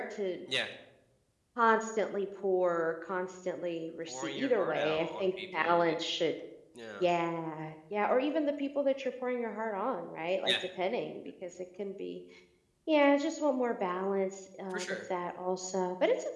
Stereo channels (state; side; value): identical; both; correlation 1.00